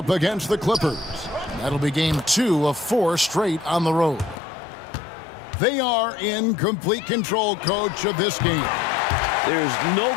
against the Clippers. That'll be game 2 of 4 straight on the road. They are in complete control, coach, of this game. There's no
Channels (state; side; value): drops out; right; at 4.4 s